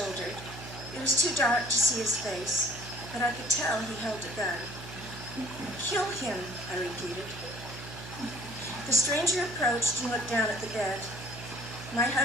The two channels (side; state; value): right; noise; hum, 13 dB below the sound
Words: It was too dark to see his face, but I could tell he held a gun. "Kill him," I repeated. The stranger approached and looked down at the bed. My